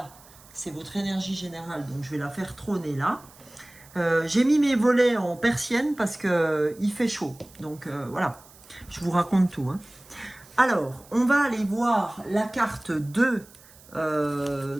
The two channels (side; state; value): right; noise; hiss, 24 dB below the sound